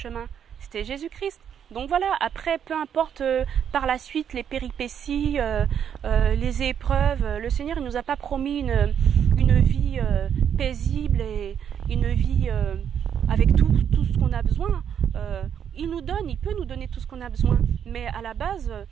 C'était Jésus-Christ. Donc voilà, après, peu importe par la suite les péripéties, les épreuves, le Seigneur il nous a pas promis une vie paisible et une vie avec tout ce qu'on a besoin. Il peut nous donner tout ce qu'on a besoin, mais à la base,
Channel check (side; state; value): left; quieter; 8.5 dB